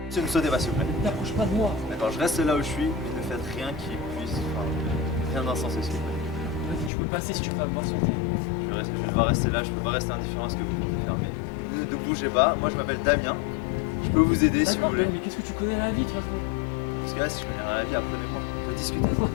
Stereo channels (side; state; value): right; drops out; at 6.9 s